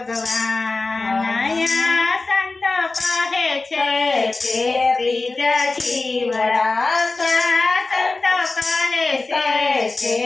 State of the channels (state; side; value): quieter; right; 3.5 dB